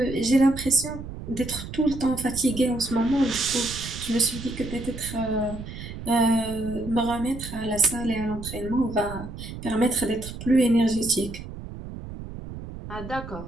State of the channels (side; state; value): right; noise; rumble, 10 dB below the sound